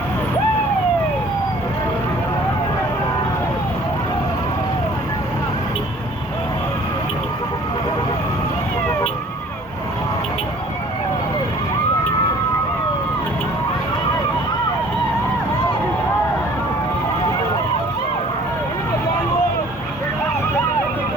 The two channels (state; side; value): normal; both; correlation 0.52